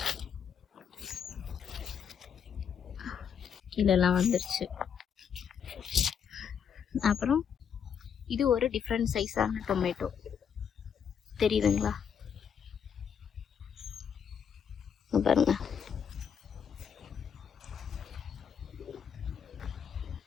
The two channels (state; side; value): quieter; right; 7.5 dB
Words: கீழெல்லாம் வந்துருச்சு. அப்புறம் இது ஒரு டிஃப்ரெண்ட் சைஸான டொமேட்டோ. தெரியுதுங்களா? பாருங்க,